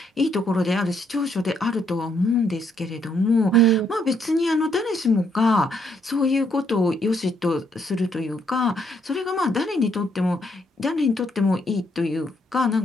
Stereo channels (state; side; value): normal; both; correlation 0.72